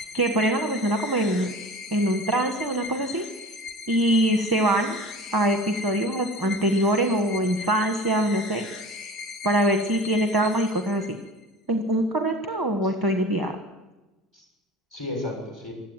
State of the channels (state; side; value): normal; both; correlation 0.39